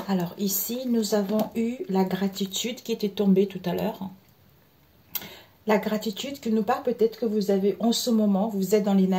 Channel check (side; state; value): both; identical; correlation 1.00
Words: Alors ici, nous avons eu la gratitude qui était tombée tout à l'heure. La gratitude qui nous parle, peut-être que vous avez en ce moment, vous êtes dans